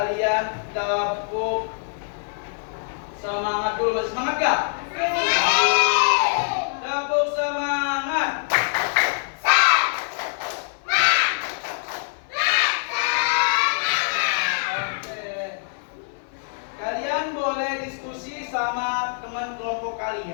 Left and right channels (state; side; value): silent; right; 58 dB below the other